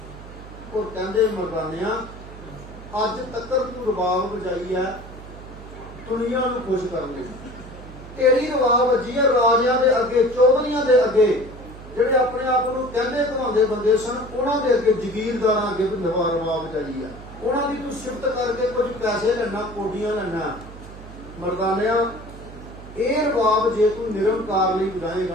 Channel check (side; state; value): right; noise; hum, 15 dB below the sound